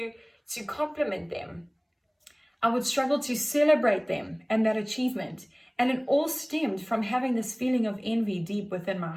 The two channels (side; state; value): both; identical; correlation 1.00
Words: compliment them. I would struggle to celebrate them and that achievement. And it all stemmed from having this feeling of envy deep within my